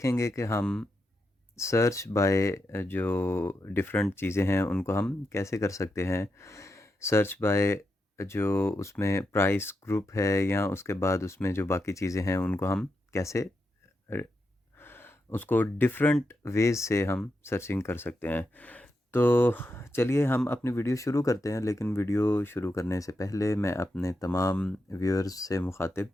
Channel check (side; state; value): both; normal; correlation 0.86